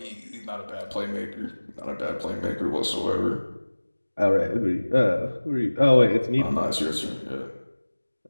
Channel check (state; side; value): inverted; both; correlation -1.00